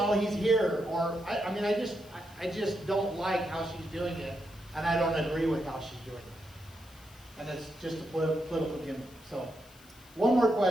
he's here? Or I just don't like how she's doing it, and I don't agree with how she's doing it. And it's just a political gimmick. So, one more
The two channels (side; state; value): left; noise; hiss, 25 dB below the sound